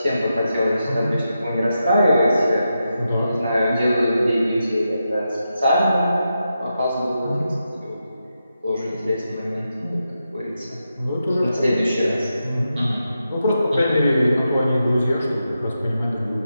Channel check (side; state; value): both; inverted; correlation -0.87